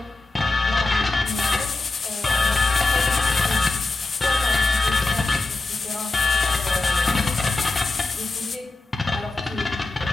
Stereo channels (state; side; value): quieter; right; 3.2 dB